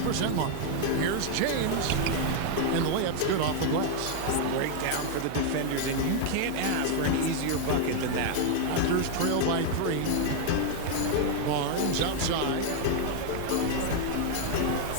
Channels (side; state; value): both; different; correlation 0.00